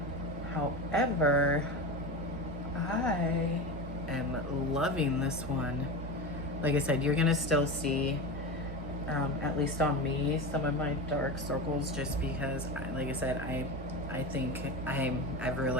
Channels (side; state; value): both; normal; correlation 0.24